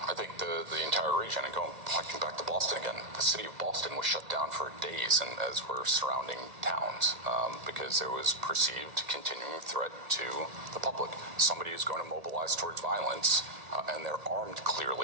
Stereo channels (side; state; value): left; late; 1.8 ms